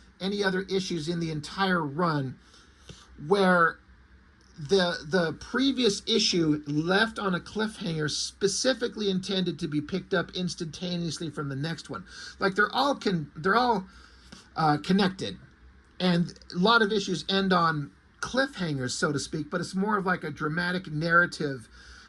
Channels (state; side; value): identical; both; correlation 1.00